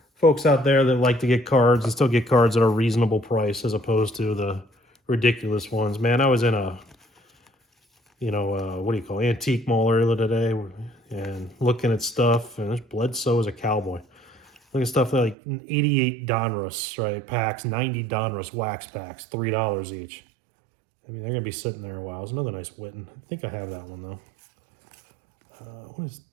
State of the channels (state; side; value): drops out; left; at 15.4 s